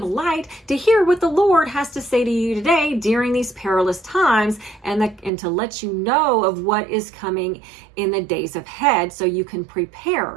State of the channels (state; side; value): drops out; left; at 5.3 s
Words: Light, to hear what the Lord has to say to you today during these perilous times and to let you know of what is coming in the days ahead so you can